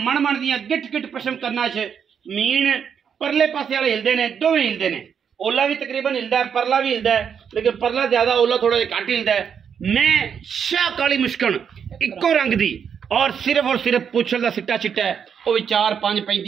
मन दियां गिट गिट पशम करना च मीन परले पासे वाले हिलदे ने, दोवें हिलदे ने। ओला भी तकरीबन हिलदा है, परला भी हिलदा है, लेकिन परला ज्यादा ओला थोड़ा जिहा घट हिलदा है। मैं शाह काली मुश्कन इक्को रंग दी और सिर्फ पुछल दा सिट्टा चिट्टा है, वो भी 4 5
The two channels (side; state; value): left; quieter; 7.5 dB